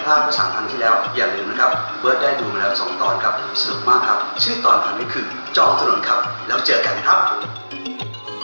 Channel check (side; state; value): both; inverted; correlation -1.00